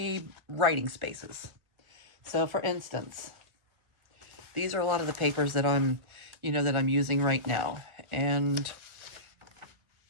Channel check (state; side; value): late; left; 1.4 ms